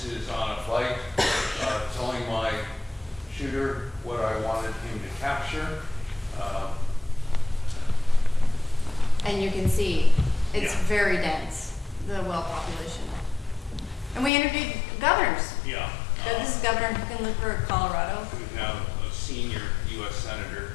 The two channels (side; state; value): right; drops out; at 14.3 s